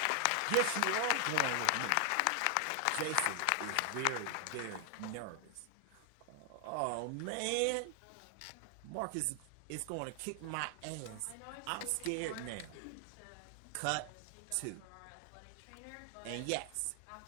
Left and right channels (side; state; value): both; different; correlation 0.00